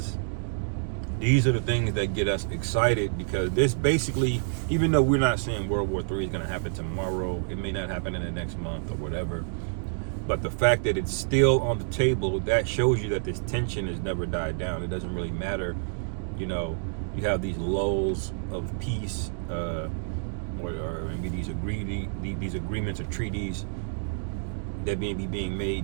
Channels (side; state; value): left; silent; digital silence